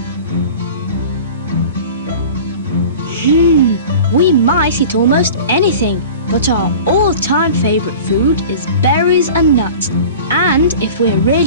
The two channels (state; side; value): inverted; both; correlation -0.39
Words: We mice eat almost anything, but our all-time favourite food is berries and nuts. And if we're